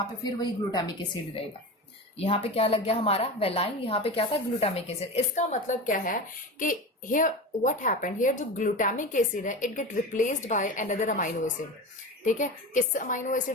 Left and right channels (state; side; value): normal; both; correlation 0.27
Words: पे फिर वही ग्लूटामिक एसिड रहेगा। यहाँ पे क्या लग गया हमारा, वेलाइन, यहाँ पे क्या था, ग्लूटामिक एसिड। इसका मतलब क्या है कि हियर व्हाट हैपेंड, हियर जो ग्लूटामिक एसिड है, it get replaced by another amino acid. ठीक है, किस अमाइनो